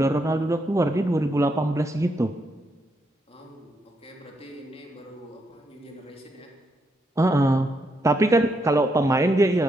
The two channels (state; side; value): normal; both; correlation 0.79